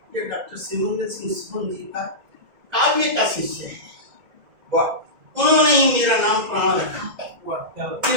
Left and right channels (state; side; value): late; left; 2.0 ms